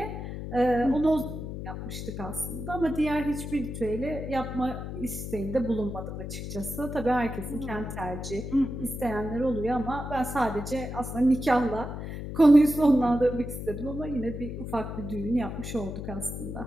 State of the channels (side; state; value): left; noise; hum, 7 dB below the sound